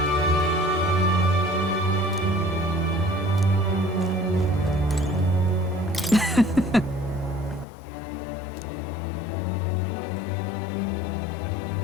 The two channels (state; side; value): drops out; right; at 7.7 s